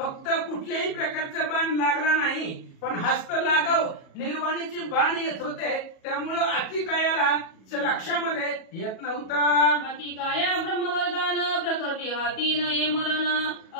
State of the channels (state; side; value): late; right; 37 ms